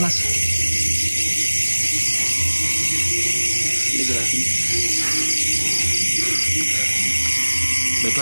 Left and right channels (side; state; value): both; inverted; correlation -1.00